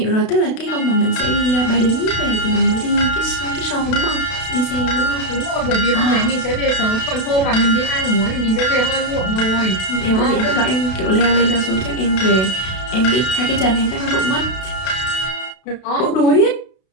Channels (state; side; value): late; right; 32 ms